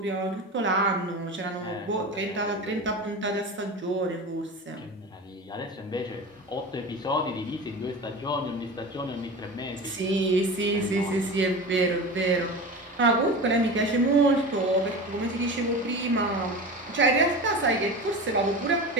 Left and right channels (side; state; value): both; normal; correlation 0.29